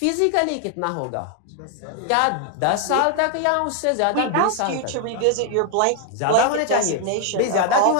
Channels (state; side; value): different; both; correlation 0.00